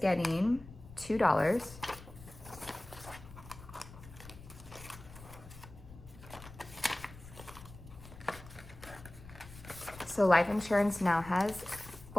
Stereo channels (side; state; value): left; noise; rumble, 17 dB below the sound